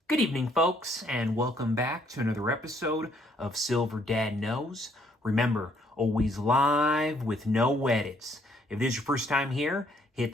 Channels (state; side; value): normal; both; correlation 0.67